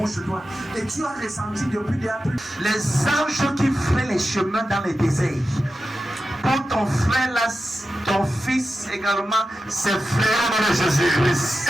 sur toi. Et tu as ressenti depuis des années les anges qui feraient les chemins dans les déserts. Pour ton frère là, ton fils également, ses frères de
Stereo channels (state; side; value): normal; both; correlation 0.92